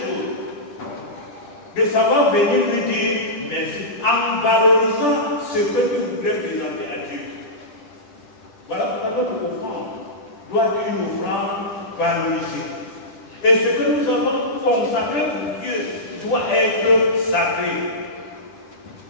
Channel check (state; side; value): late; right; 10 ms